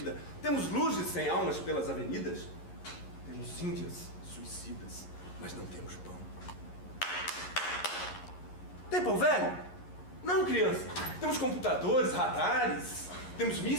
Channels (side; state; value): right; late; 11 ms